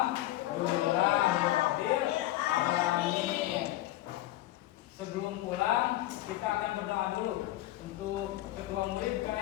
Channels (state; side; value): quieter; right; 15.6 dB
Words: alamin. Sebelum pulang, kita akan berdoa dulu. Untuk ketua murid